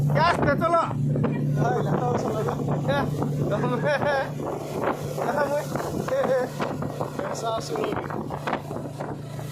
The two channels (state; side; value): identical; both; correlation 1.00